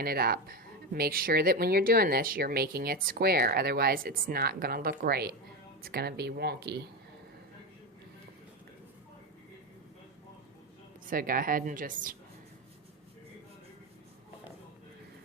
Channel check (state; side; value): normal; both; correlation 0.15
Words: it up. Make sure that when you're doing this you're making it square, otherwise it's not going to look right. It's going to be wonky. So go ahead and just